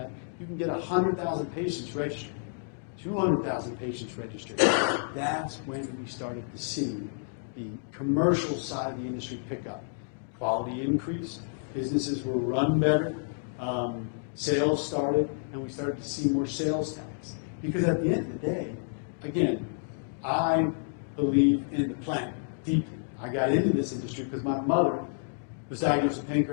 you can get 100,000 patients registered, 200,000 patients registered, that's when we started to see the commercial side of the industry pick up. Quality increased, businesses were run better, sales started, and we started to see more sales tax. Because at the end of the day, again, I believe in the plant deeply. I got into this industry because my mother was diagnosed with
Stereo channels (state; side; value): silent; right; digital silence